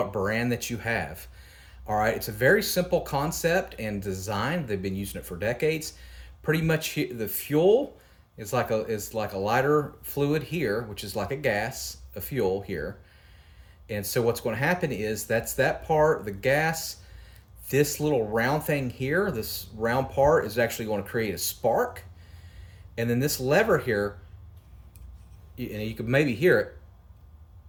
brand that you have. All right, it's a very simple concept and design. They've been using it for decades. Pretty much the fuel is like a lighter fluid here, which is like a gas, a fuel here. And so what's going to happen is that's that part, the gas. This little round thing here, this round part is actually going to create a spark. And then this lever here, and you can maybe hear it,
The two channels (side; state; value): both; identical; correlation 1.00